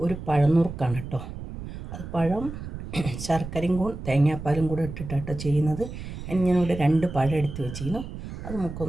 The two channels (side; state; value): right; noise; rumble, 9 dB below the sound